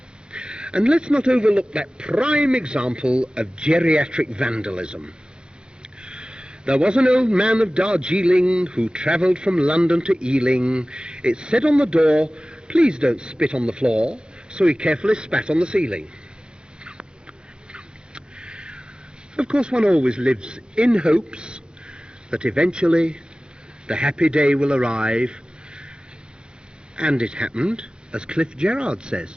And let's not overlook that prime example of geriatric vandalism. There was an old man of Darjeeling who travelled from London to Ealing. It said on the door, please don't spit on the floor, so he carefully spat on the ceiling. Of course, one always lives in hopes that eventually the happy day will arrive, and it happened, as Cliff Gerard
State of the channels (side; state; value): left; late; 0.050 ms